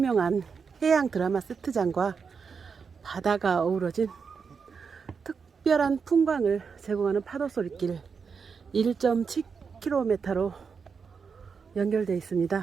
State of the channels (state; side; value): quieter; left; 5.7 dB